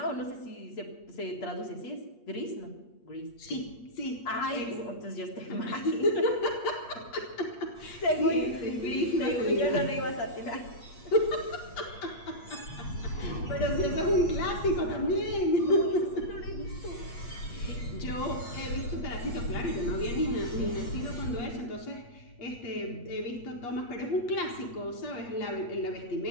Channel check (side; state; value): right; late; 8.4 ms